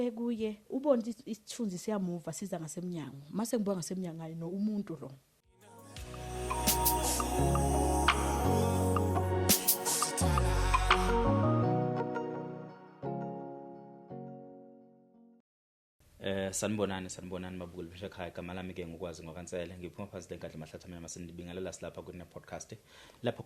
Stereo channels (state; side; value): identical; both; correlation 1.00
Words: ubona isithunzi siyamuva siza ngasemnyango mase ngibuka ngasemnyango hayi no umuntu lo sanibonani mabukeli besha ekhaya igama lami ke ngikwazi ngokansele ngiphuma phansi lenkandla mahlathamela masendibingelela silapha kune podcast lapho